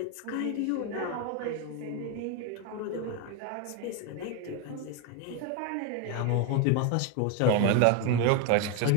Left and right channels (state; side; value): different; both; correlation 0.02